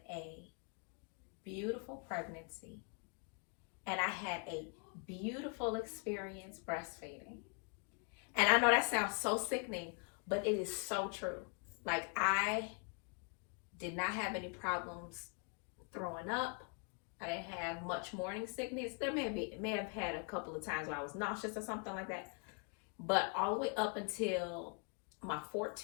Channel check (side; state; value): right; quieter; 37.4 dB